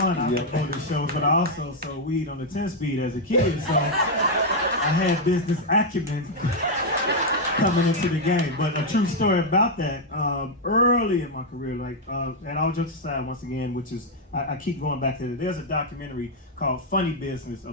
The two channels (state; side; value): normal; both; correlation 0.00